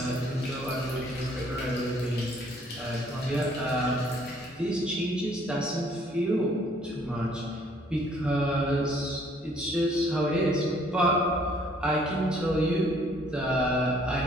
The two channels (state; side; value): normal; both; correlation 0.61